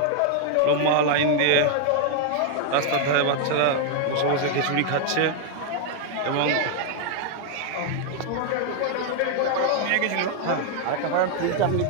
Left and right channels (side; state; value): both; different; correlation 0.00